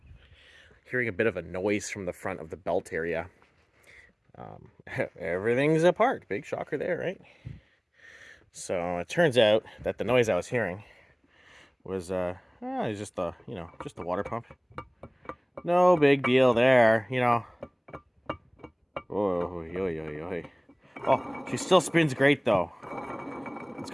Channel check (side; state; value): both; identical; correlation 1.00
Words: Hearing a bit of a noise from the front of the belt area. Everything's apart. Big shocker there, right? So it turns out that the noise I was hearing was just the water pump. No big deal there, Oh, Oh, she still spins great though. It's